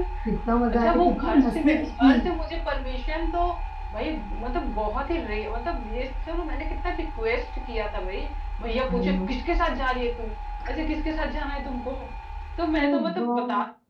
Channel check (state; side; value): identical; both; correlation 1.00